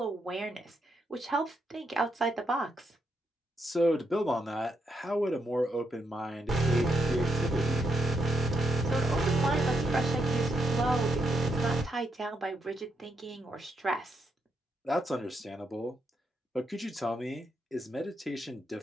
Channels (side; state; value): both; normal; correlation 0.79